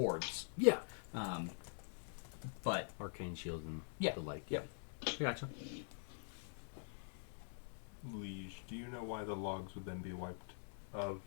Yeah. But Arcane shield and Yeah. the like. Yep. Gotcha. Liege, do you know why the logs would then be wiped of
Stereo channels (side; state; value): right; silent; digital silence